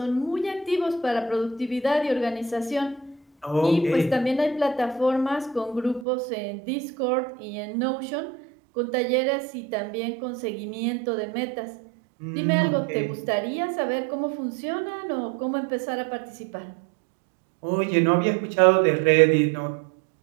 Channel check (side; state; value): left; drops out; at 6.1 s